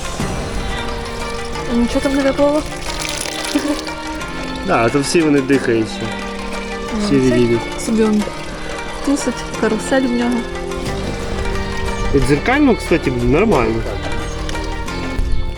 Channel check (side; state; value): both; identical; correlation 1.00